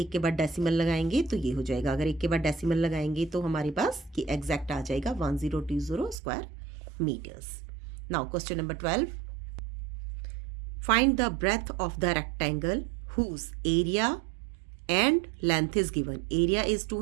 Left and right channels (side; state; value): left; drops out; at 6.2 s